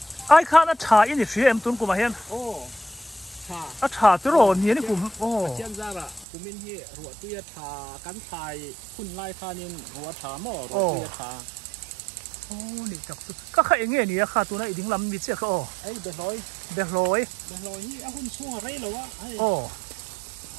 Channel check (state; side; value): drops out; left; at 6.2 s